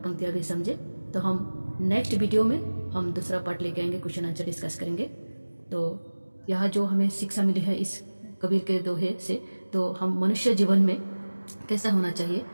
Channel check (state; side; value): inverted; both; correlation -1.00